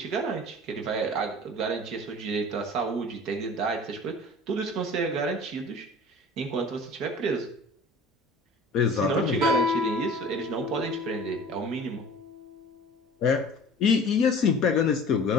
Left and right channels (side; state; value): both; normal; correlation 0.43